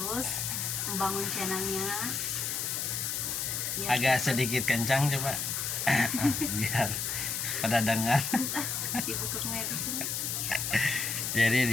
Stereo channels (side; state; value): left; noise; hiss, 1 dB below the sound